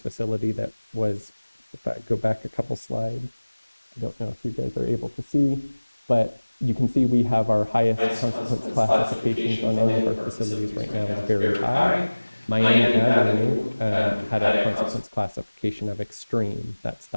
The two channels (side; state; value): both; inverted; correlation -1.00